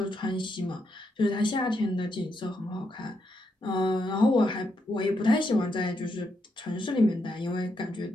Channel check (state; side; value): normal; both; correlation 0.81